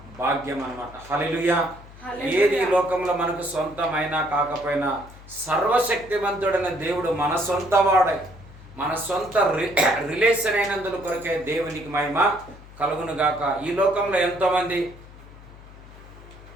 భాగ్యం అన్నమాట. హల్లెలూయా. ఏది ఈ లోకంలో మనకు సొంతమైనా కాకపోయినా సర్వశక్తివంతుడైన దేవుడు మన సొంత వాడై, మన సొంత రిలేషన్ అయినందుల కొరకే దేవునికి మహిమ కలుగును గాక. ఈ లోకంలో ఎంతోమంది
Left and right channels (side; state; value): left; noise; hum, 19 dB below the sound